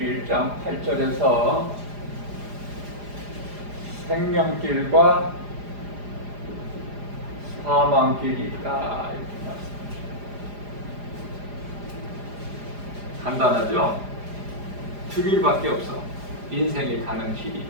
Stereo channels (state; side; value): late; left; 4.9 ms